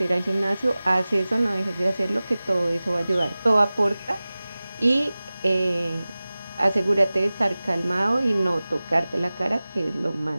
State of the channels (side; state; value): both; inverted; correlation -0.98